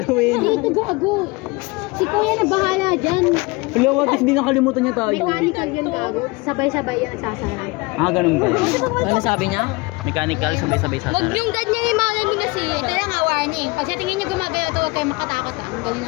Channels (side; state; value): right; quieter; 25.0 dB